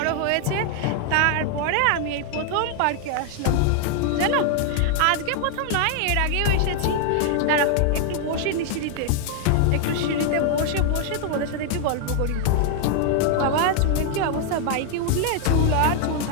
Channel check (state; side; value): different; both; correlation 0.00